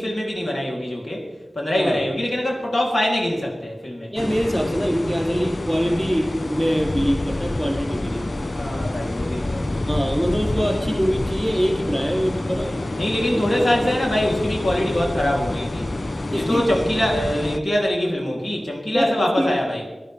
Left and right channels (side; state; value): both; normal; correlation 0.97